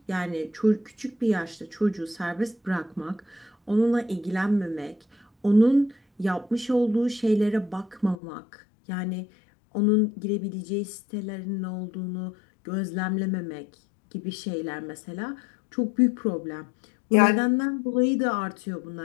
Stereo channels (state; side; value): drops out; right; at 8.2 s